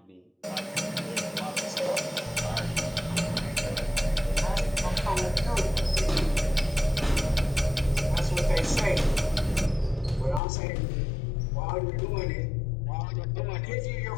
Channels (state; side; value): drops out; right; at 10.4 s